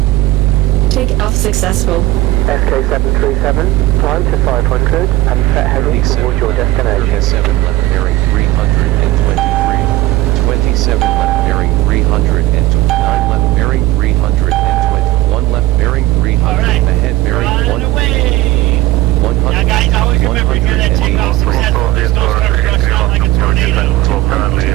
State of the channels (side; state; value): left; quieter; 17.0 dB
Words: Take off successful. SK737, climb to 500 and set heading towards your destination. 37 left bearing 323. 27 left bearing 309 left bearing 320. 1 left bearing 300. Alright, Ahead bearing we're on 1. the way. 100. Now guys, always remember here that takeoff successful. There's no start rushing out like a tornado. 200